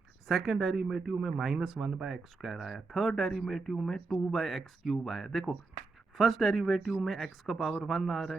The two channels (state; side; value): quieter; left; 3.8 dB